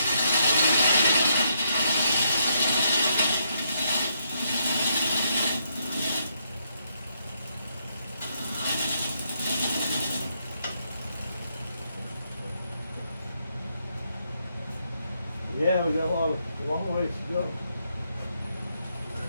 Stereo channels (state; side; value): inverted; both; correlation -0.77